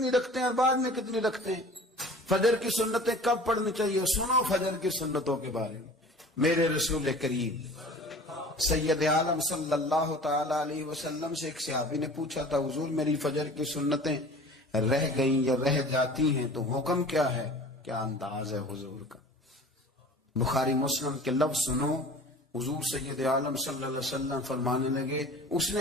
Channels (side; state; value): both; normal; correlation 0.43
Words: رکھتے ہیں اور بعد میں کتنی رکھتے ہیں. فجر کی سنتیں کب پڑھنی چاہیے؟ سنو فجر کی سنتوں کے بارے میں. میرے رسول کریم سید عالم صلی اللہ تعالی علیہ وسلم سے ایک صحابی نے پوچھا تھا حضور میری فجر کی سنتیں رہ گئیں یا رہ جاتی ہیں تو حکم کیا ہے؟ کیا انداز ہے حضور کا. بخاری مسلم کے لفظ سنو. حضور سید عالم صلی اللہ علیہ وسلم فرمانے لگے. اس